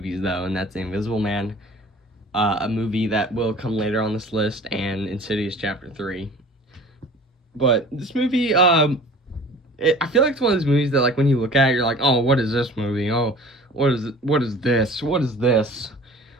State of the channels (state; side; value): normal; both; correlation 0.44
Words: though, and that's The Invisible Man, a movie that will come later on this list, and Insidious Chapter 3. But this movie, I feel like it's one of those movies that, like, when you look at it, you're like, oh, what is this movie? Oh, what is this? What is this?